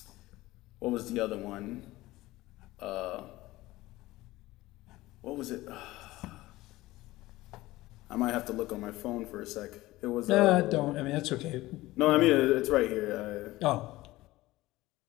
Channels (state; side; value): quieter; right; 18.1 dB